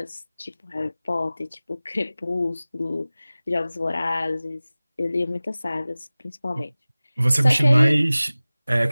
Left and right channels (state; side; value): inverted; both; correlation -0.98